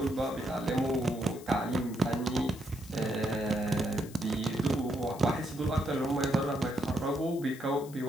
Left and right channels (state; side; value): noise; left; hiss, 19 dB below the sound